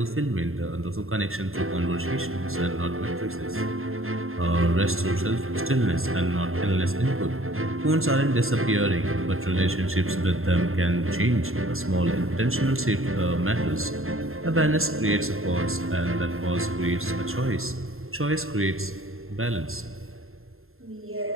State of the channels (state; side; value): late; left; 0.61 ms